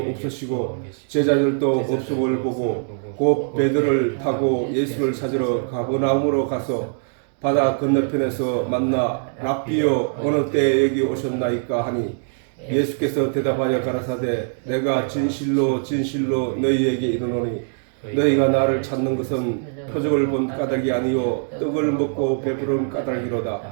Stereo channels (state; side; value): silent; left; digital silence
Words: 제자들도 없음을 보고 곧 배들을 타고 예수를 찾으러 가버나움으로 가서 바다 건너편에서 만나 랍비여 어느 때에 여기 오셨나이까 하니 예수께서 대답하여 가라사대 내가 진실로 진실로 너희에게 이르노니 너희가 나를 찾는 것은 표적을 본 까닭이 아니요 떡을 먹고 배부른